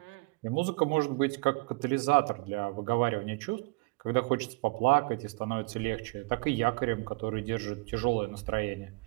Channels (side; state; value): left; quieter; 27.7 dB